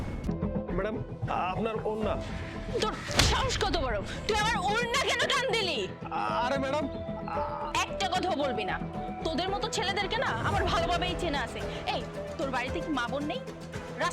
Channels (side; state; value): both; identical; correlation 1.00